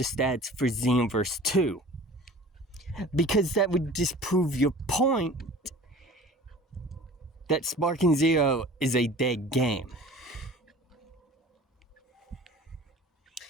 stats for Xenoverse 2? Because that would disprove your point that Sparking Zero is a dead game.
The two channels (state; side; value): normal; both; correlation 0.43